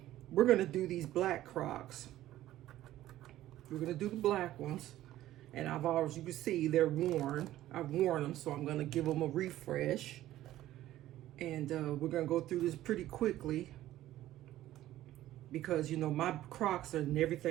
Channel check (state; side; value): quieter; left; 14.2 dB